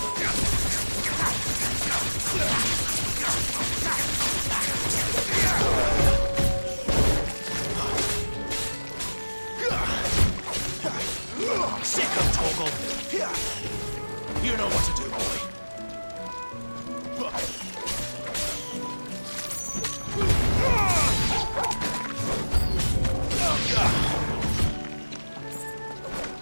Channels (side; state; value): both; inverted; correlation -1.00